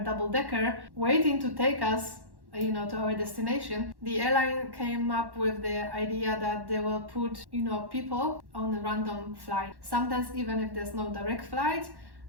double-decker waiting to take us to our destination. The airline came up with the idea that they will put people on a random flight. Sometimes even if there's no direct flight,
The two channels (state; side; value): late; left; 1.1 ms